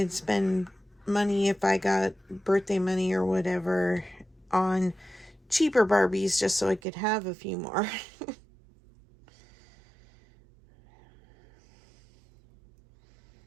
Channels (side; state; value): left; drops out; at 6.8 s